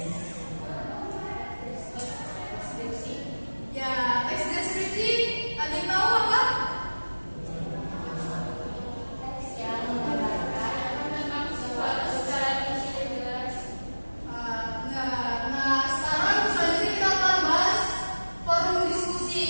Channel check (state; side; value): inverted; both; correlation -1.00